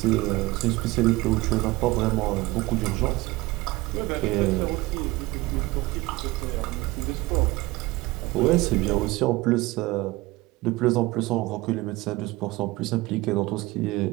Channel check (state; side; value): quieter; left; 20.4 dB